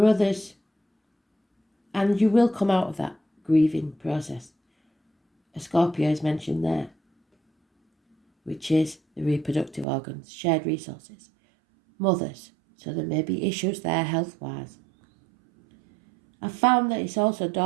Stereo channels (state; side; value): drops out; left; at 9.9 s